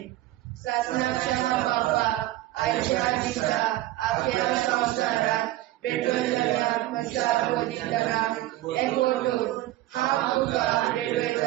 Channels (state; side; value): quieter; left; 16.0 dB